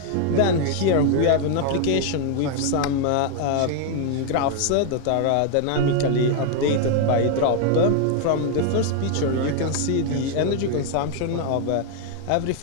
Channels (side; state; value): both; different; correlation 0.00